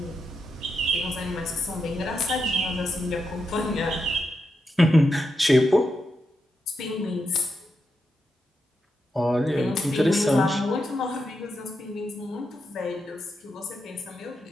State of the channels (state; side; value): normal; both; correlation 0.85